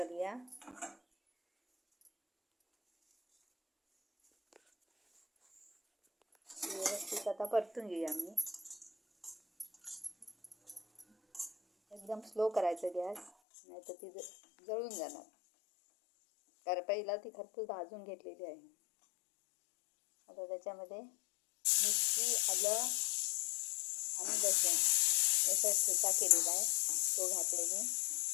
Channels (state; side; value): drops out; right; at 13.3 s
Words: व्यवस्थित आता परतून घेऊया. आम्ही एकदम स्लो करायचं गॅस, नाही तर ती जळून जाणार, कारण पहिला ती खरपूस भाजून घेतलेली आहे. आता त्याच्यामध्ये मिरची, आलं आणि लसूण याचा ठेचा केलेला आहे, तो घातले मी.